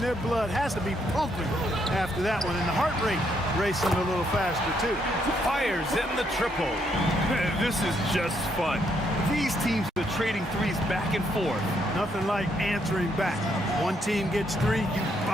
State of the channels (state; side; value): normal; both; correlation 0.74